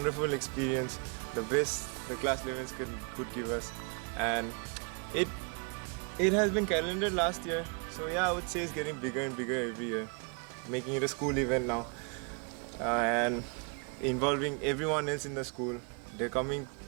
experience, the best the class 11s could give us, and it has been calendared last year, so yeah, I would say it's getting bigger and bigger every year, making it a school event now, and involving everyone else in the school. They're coming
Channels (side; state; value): left; quieter; 36.7 dB